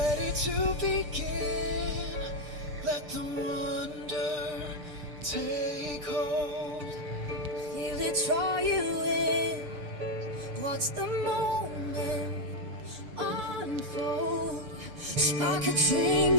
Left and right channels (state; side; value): late; left; 6.6 ms